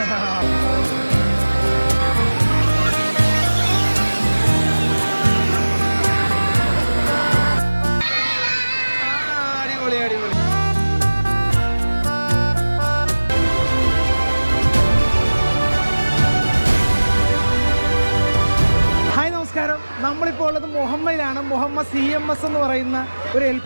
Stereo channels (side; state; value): both; inverted; correlation -1.00